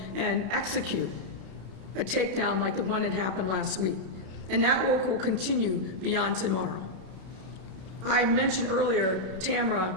execute a takedown like the one that happened last week. And that work will continue beyond tomorrow. I mentioned earlier,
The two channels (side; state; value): left; late; 32 ms